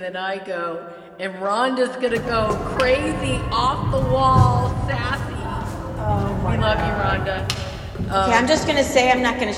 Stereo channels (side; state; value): both; identical; correlation 1.00